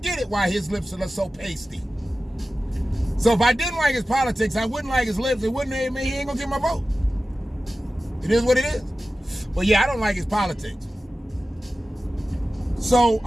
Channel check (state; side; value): normal; both; correlation 0.95